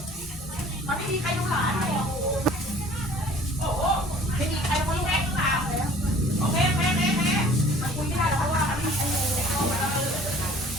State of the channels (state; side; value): normal; both; correlation 0.51